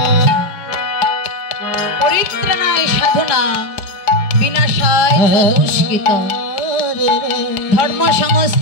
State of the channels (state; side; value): late; right; 4.7 ms